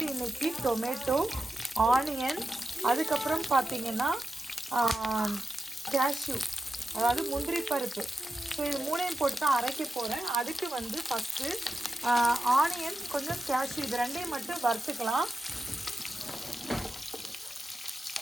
இன்றைக்கி டொமேட்டோ, ஆனியன், அதுக்கப்புறம் பார்த்திங்கன்னா கேஷ்யூ, அதாவது முந்திரி பருப்பு. ஸோ இது 3ஐயும் போட்டு தான் அரைக்க போகிறேன். அதுக்கு ஃபஸ்ட்டு ஆனியன், கொஞ்சம் கேஷ்யூ, இது 2ஐயும் மட்டும் வறுத்துக்கலாம்.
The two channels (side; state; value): both; normal; correlation 0.91